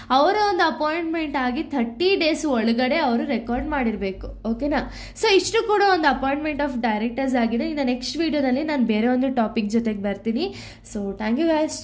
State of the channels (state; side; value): identical; both; correlation 1.00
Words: ಅವರ ಒಂದು ಅಪಾಯಿಂಟ್ಮೆಂಟ್ ಆಗಿ 30 days ಒಳಗಡೆ ಅವರು ರೆಕಾರ್ಡ್ ಮಾಡಿರಬೇಕು. ಓಕೆನಾ. ಸೊ ಇಷ್ಟು ಕೂಡ ಒಂದು ಅಪಾಯಿಂಟ್ಮೆಂಟ್ ಆಫ್ ಡೈರೆಕ್ಟರ್ಸ್ ಆಗಿದೆ. ಇನ್ನು ನೆಕ್ಸ್ಟ್ ವಿಡಿಯೋದಲ್ಲಿ ನಾನು ಬೇರೆ ಒಂದು ಟಾಪಿಕ್ ಜೊತೆಗೆ ಬರ್ತೀನಿ. So thank you guys,